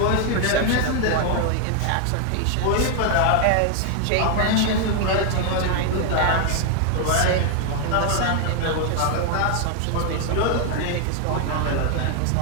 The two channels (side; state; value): both; different; correlation 0.00